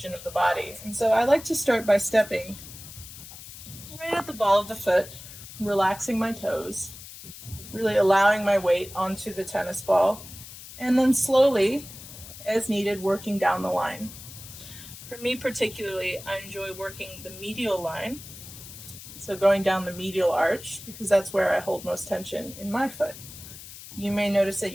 of the body. And so I like to start by stepping right at the ball of the foot, relaxing my toes, really allowing my weight onto the tennis ball, and then slowly, as needed, working down the line. For me particularly, I enjoy working the medial line, so going down the medial arch, because that's where I hold most tension in my foot. You may notice that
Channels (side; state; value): left; noise; hiss, 15 dB below the sound